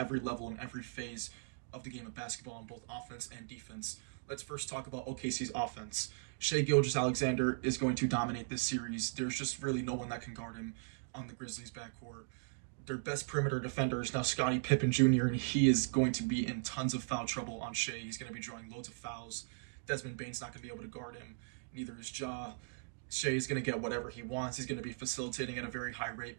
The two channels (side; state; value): left; silent; digital silence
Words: level and every phase of the game of basketball on both offense and defense. Let's first talk about OKC's offense. Shai Gilgeous-Alexander is going to dominate this series. There's just really no one that can guard him on the Grizzlies' backcourt. Their best perimeter defender is now Scottie Pippen Jr., and he is going to be in tons of foul trouble on Shai. He's going to be drawing loads of fouls. Desmond Bane's not going to be able to guard him. Neither is Ja. Shai is going to get whatever he wants. He's going to be facilitating at a very high rate